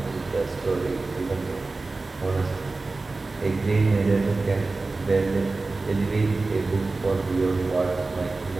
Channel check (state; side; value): quieter; left; 3.5 dB